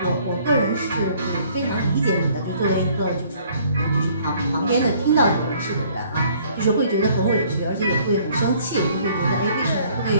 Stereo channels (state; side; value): inverted; both; correlation -0.59